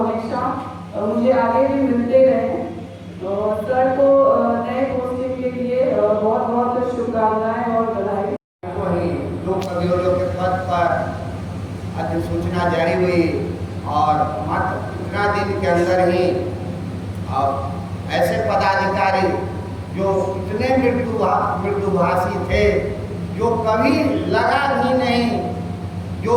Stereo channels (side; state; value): both; identical; correlation 1.00